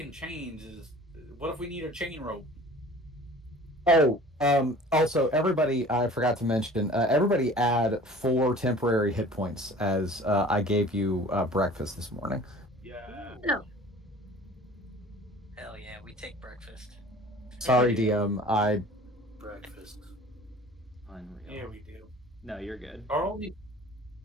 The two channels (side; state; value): both; normal; correlation 0.45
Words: chains is. What if we need a chain rope? Oh, also, everybody, I forgot to mention, everybody add 4 temporary hit points as I gave you breakfast this morning. Yeah. no. Hell yeah, we take breakfast. Sorry, DM. I Breakfast. Unreal. Yeah, we do. No, you're good. Are all these,